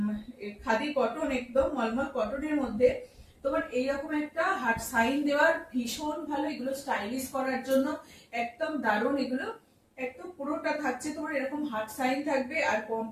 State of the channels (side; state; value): both; identical; correlation 1.00